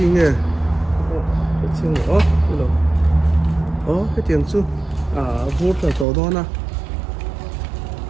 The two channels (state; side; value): drops out; left; at 6.1 s